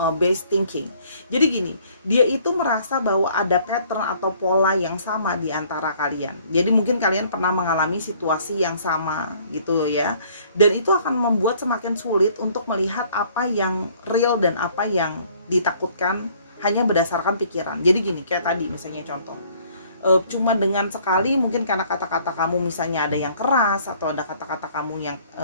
based thinking. Jadi gini, dia itu merasa bahwa ada pattern atau pola yang sama di antara kalian. Jadi mungkin kalian pernah mengalami situasi yang sama gitu ya. Dan itu akan membuat semakin sulit untuk melihat apa yang real dan apa yang ditakutkan hanya berdasarkan pikiran. Jadi gini, kayak tadi misalnya contoh. Cuma dengan sekali mungkin karena kata-kata kamu misalnya ada yang keras atau ada kata-kata kamu yang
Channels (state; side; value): inverted; both; correlation -0.59